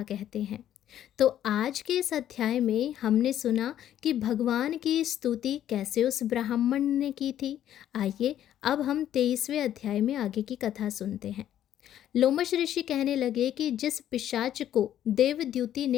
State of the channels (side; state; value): right; quieter; 11.3 dB